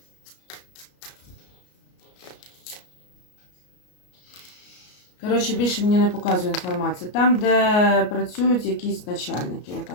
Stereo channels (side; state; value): right; late; 33 ms